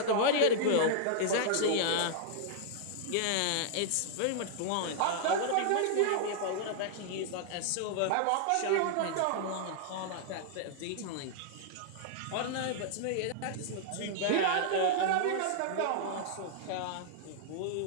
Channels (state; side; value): different; both; correlation -0.01